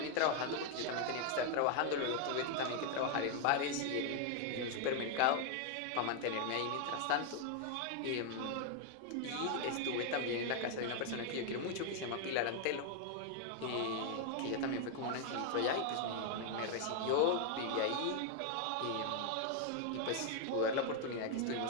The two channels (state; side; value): different; both; correlation 0.00